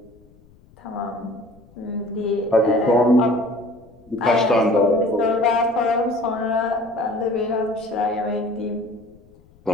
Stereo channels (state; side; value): noise; left; rumble, 28 dB below the sound